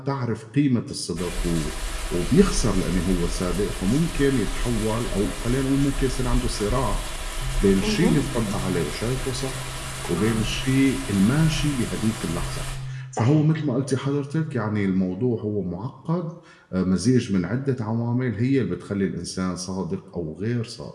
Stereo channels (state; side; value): identical; both; correlation 1.00